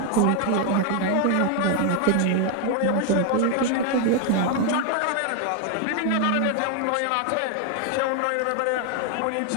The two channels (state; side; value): different; both; correlation 0.01